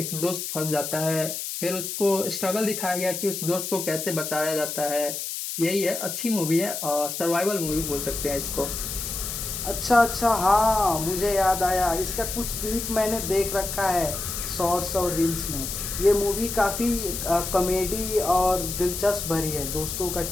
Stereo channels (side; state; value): left; noise; hiss, 5 dB below the sound